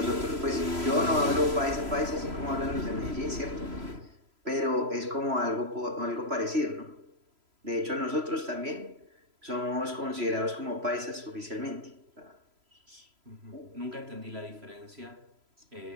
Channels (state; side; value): late; left; 3.0 ms